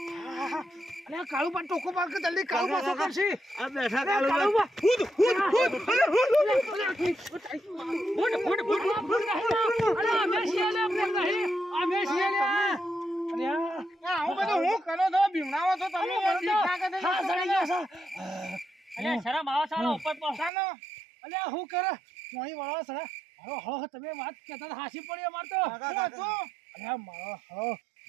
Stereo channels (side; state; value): left; drops out; at 20.5 s